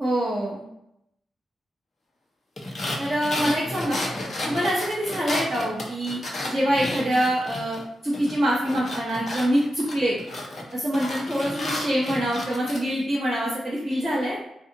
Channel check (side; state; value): both; normal; correlation 0.89